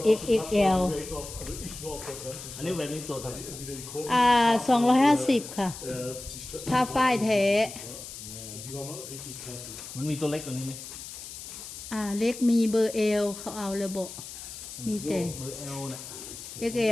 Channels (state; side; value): noise; left; hiss, 11 dB below the sound